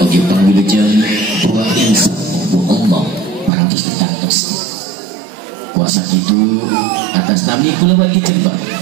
pangwilujeng buah insya Allah parantos ditantos. Kuasa itu atas nami kula wali jembar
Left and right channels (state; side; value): drops out; left; at 3.5 s